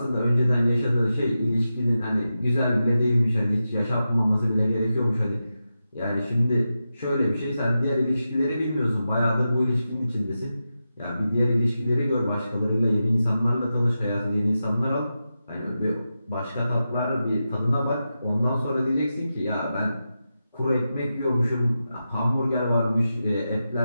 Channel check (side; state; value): both; inverted; correlation -0.90